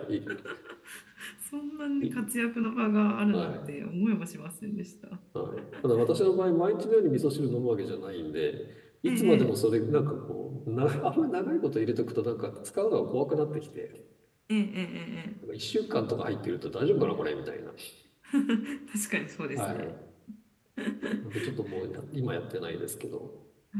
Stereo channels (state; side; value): identical; both; correlation 1.00